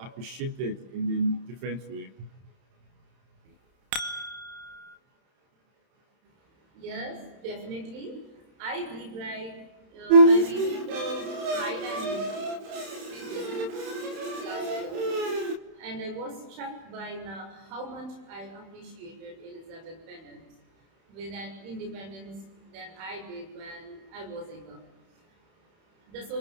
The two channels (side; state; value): left; late; 31 ms